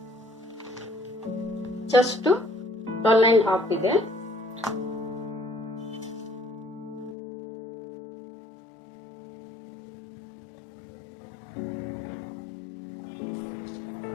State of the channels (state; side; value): drops out; right; at 7.2 s